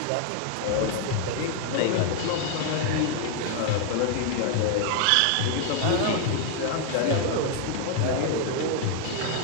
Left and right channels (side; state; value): both; different; correlation 0.00